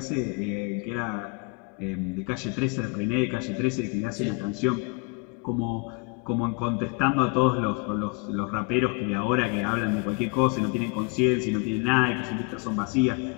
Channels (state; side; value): quieter; right; 30.7 dB